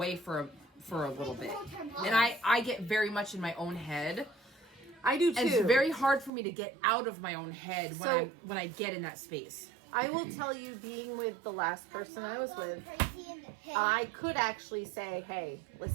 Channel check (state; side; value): drops out; left; at 6.3 s